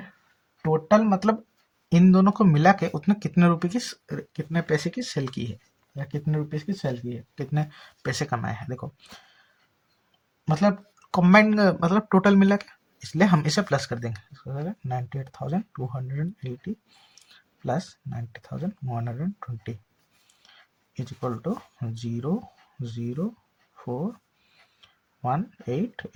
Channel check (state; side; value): identical; both; correlation 1.00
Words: टोटल मतलब इन दोनों को मिला के उसने कितने रुपए की कितने पैसे की सेल की है, या कितने रुपए की सेल की है, कितने पैसे कमाए हैं। देखो मतलब कॉम्बाइंड मतलब टोटल मिला के, इसलिए हम इसे प्लस कर देंगे। 98,280 plus 90,120 is equal to